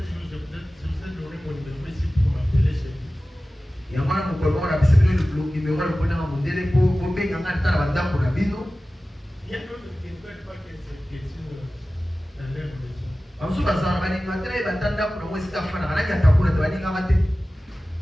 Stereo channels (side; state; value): both; normal; correlation 0.96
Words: jour, je vous ai donné mon numéro ici pour m'appeler chez vous. Il y a un numéro il y a d'autres qui ne veulent pas que cette question dans leur maison.